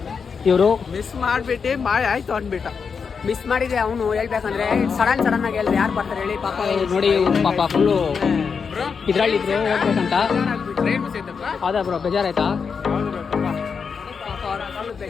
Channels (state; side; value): quieter; right; 5.9 dB